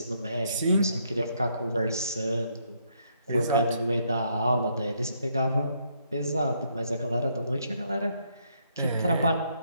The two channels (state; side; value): inverted; both; correlation -0.72